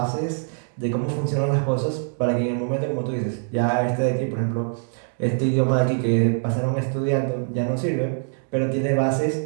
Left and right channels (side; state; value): left; silent; 63 dB below the other